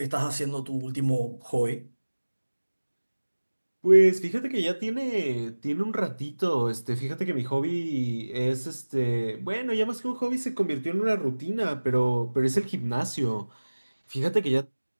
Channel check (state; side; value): inverted; both; correlation -1.00